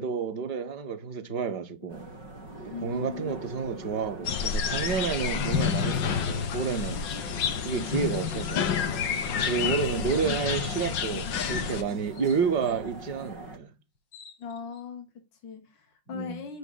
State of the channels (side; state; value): right; late; 5.5 ms